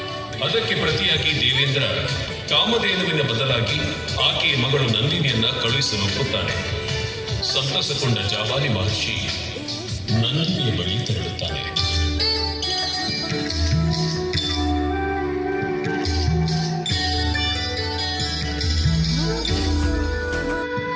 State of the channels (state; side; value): identical; both; correlation 1.00